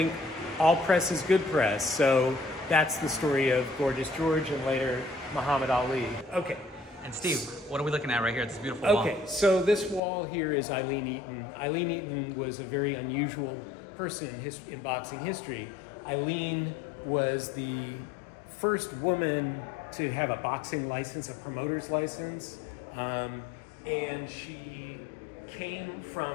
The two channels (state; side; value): drops out; right; at 10.0 s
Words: all press is good press. So that's the story of Gorgeous George and later Muhammad Ali. Okay. And Steve, what are we looking at right here? It's this beautiful wall. Okay, so this wall here is Aileen Eaton. Aileen Eaton was a very unusual person in boxing history. Aileen was the first woman to have a boxing license, a promoter's license, and she came